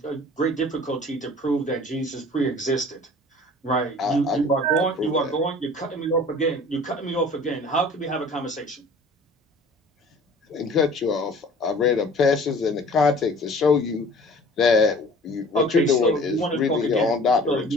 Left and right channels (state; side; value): normal; both; correlation 0.47